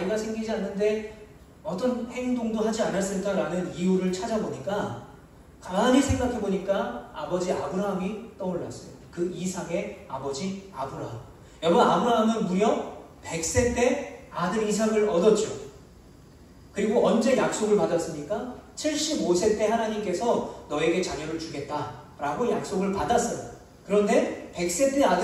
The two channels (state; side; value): identical; both; correlation 1.00